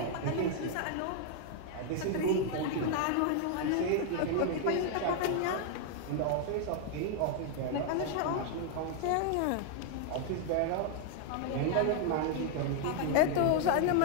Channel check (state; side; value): different; both; correlation 0.00